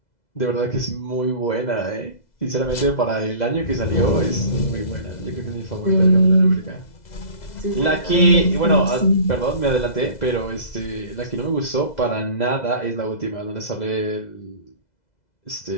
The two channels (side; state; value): right; late; 2.0 ms